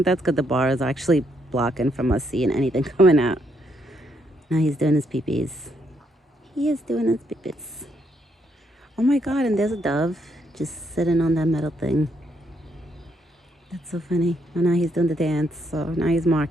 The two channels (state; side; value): normal; both; correlation 0.75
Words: good. The bar is actually blocking from us seeing anything coming out. Now he's doing his pee-pees. He is doing his pee-pees. Oh my God, and there's a dove just sitting on that metal thing. That's so funny. Oh, now he's doing the dance. So now he's